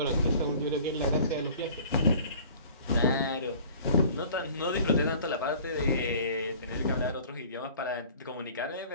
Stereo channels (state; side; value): inverted; both; correlation -0.47